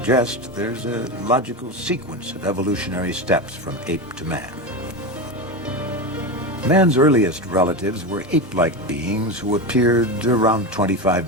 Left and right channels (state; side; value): normal; both; correlation 0.18